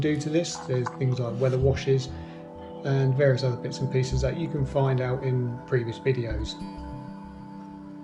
to this. There's things like weather washes and various other bits and pieces that you can find out in previous videos.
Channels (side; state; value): both; identical; correlation 1.00